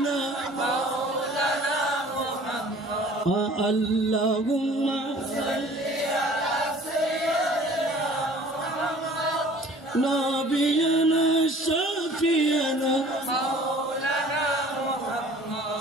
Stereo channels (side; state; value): both; normal; correlation 0.49